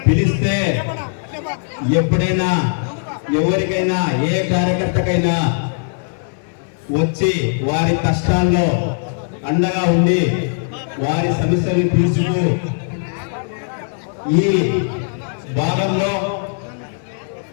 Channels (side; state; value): right; silent; digital silence